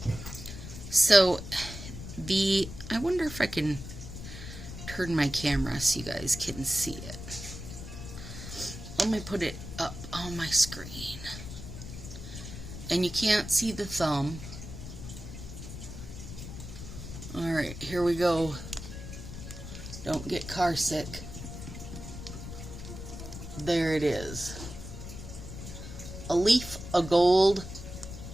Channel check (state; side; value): noise; left; rumble, 10 dB below the sound